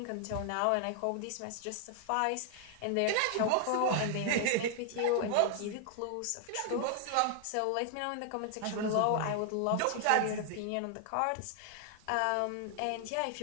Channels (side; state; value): both; different; correlation 0.00